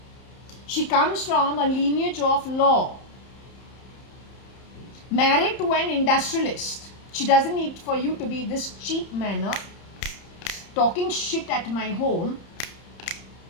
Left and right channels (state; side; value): late; right; 31 ms